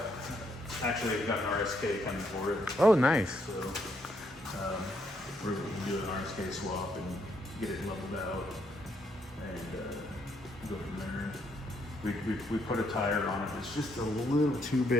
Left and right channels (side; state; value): both; normal; correlation 0.73